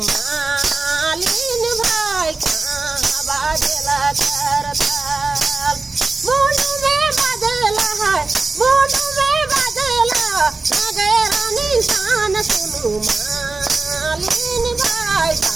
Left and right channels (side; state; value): left; quieter; 3.7 dB